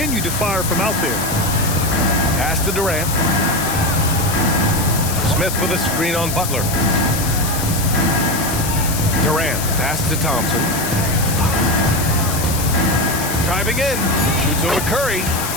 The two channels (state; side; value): noise; left; hiss, 5 dB below the sound